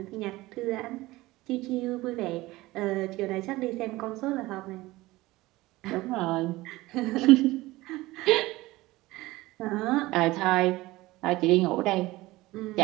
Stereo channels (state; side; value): quieter; left; 19.1 dB